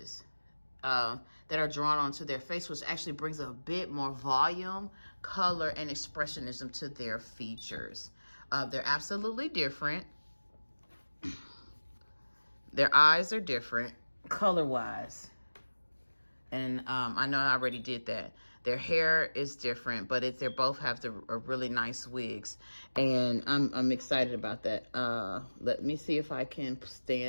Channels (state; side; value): inverted; both; correlation -1.00